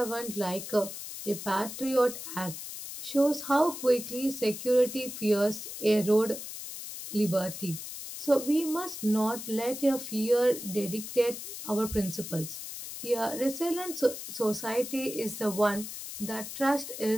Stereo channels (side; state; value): left; noise; hiss, 9 dB below the sound